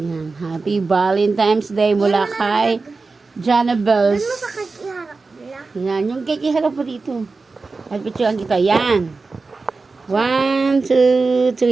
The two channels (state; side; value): quieter; left; 4.0 dB